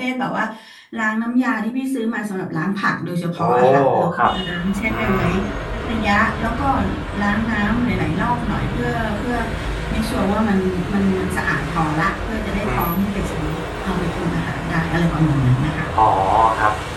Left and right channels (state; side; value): identical; both; correlation 1.00